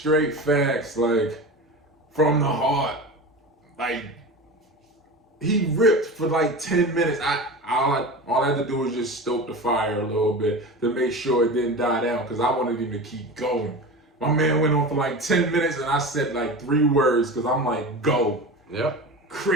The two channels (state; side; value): normal; both; correlation 0.30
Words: facts, like, from the heart. Like, he ripped for like 10 minutes. All I had to do was just stoke the fire a little bit to make sure it didn't die down because I wanted him to keep going. My man went on for like 10 minutes and I said like 3 words because I'm like, go. Yep.